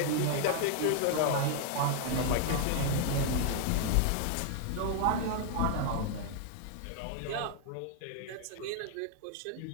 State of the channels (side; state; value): both; different; correlation 0.00